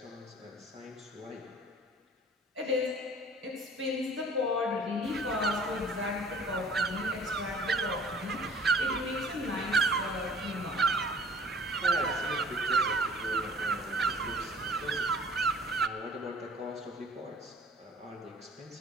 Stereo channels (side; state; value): both; normal; correlation 0.50